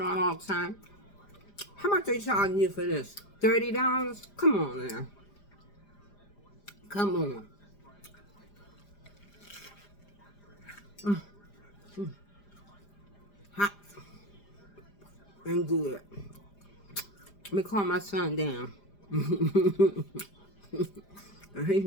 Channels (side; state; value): right; late; 5.0 ms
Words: all the time. How much they charging you for this? $30? Come on now. Come on. Hot and good. Let me calm my son down. He